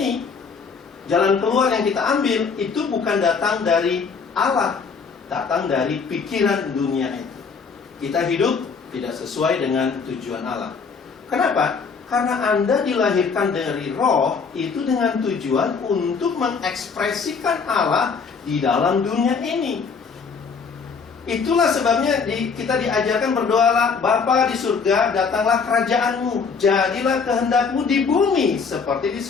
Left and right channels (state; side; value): quieter; right; 5.4 dB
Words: jalan keluar yang kita ambil, itu bukan datang dari Allah, datang dari pikiran dunia itu. Kita hidup tidak sesuai dengan tujuan Allah. Kenapa? Karena Anda dilahirkan dari roh, itu dengan tujuan untuk mengekspresikan Allah di dalam dunia ini. Itulah sebabnya kita diajarkan berdoalah, Bapa di surga, datanglah kerajaanmu, jadilah kehendakmu di bumi seperti di